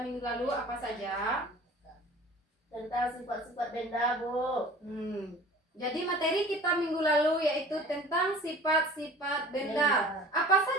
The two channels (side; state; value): both; normal; correlation 0.44